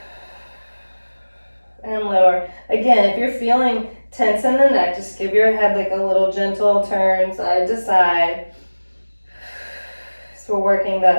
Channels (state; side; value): inverted; both; correlation -1.00